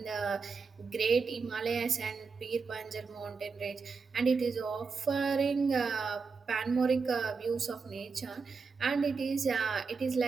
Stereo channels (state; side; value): quieter; left; 4.9 dB